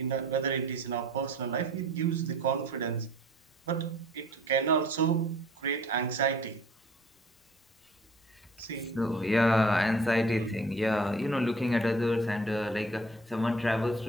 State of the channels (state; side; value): normal; both; correlation 0.51